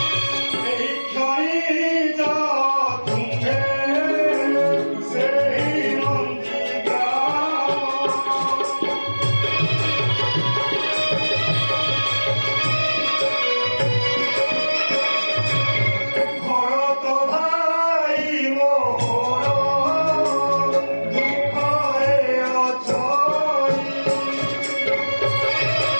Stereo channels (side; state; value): both; inverted; correlation -1.00